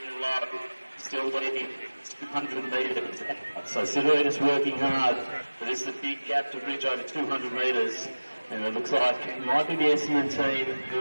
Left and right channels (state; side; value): inverted; both; correlation -1.00